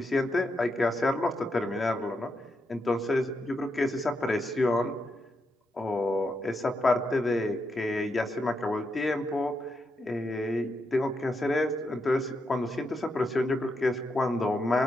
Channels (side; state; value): both; normal; correlation 0.83